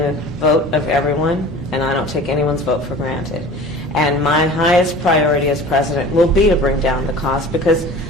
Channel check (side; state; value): both; normal; correlation 0.40